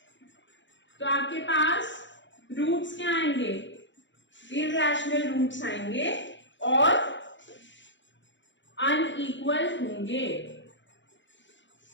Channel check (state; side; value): late; right; 0.54 ms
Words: तो आपके पास रूट्स क्या आएंगे? इरैशनल रूट्स आएंगे और अनइक्वल होंगे,